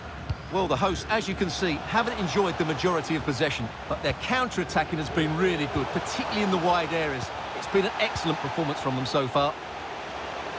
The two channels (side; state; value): both; identical; correlation 1.00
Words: Well, the hosts, as you can see, haven't enjoyed the majority of possession, but their counter-attacking has been really good, particularly in the wide areas. It's been an excellent performance from them so far.